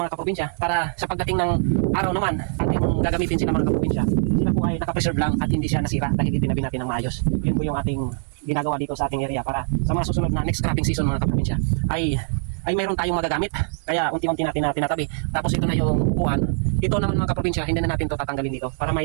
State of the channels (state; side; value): silent; left; 62 dB below the other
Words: mga kaprobinsya para sa pagdating ng araw naman ating gagamitin sila mga kaprobinsya. Sila po ay nakapreserve lang at hindi siya nasira dahil itinabi natin ng maayos. Yun po yung ating ginagawa dito sa ating area para sa mga susunod na next cropping season mga kaprobinsya ay mayroon tayong magagamit. Kaya unti-unti natin na tinatabi. Tapos ito na yung upuan. Ito naman mga kaprobinsya, hindi na natin ito tatanggalin dito para may